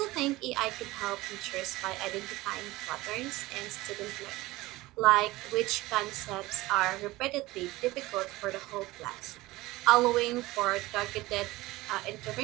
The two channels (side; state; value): left; quieter; 19.3 dB